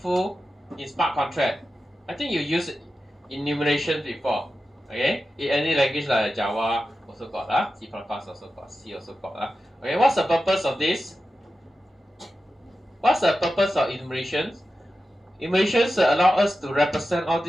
in smart contract. I think you use enumeration before. Okay, in any language like Java also got C++ also got, C also got. Okay, what's the purpose of this? What's the purpose of enumeration? Equations allow us to represent all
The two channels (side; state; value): both; normal; correlation 0.92